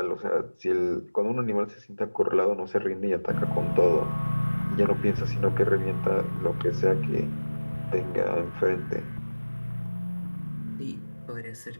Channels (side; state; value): both; inverted; correlation -1.00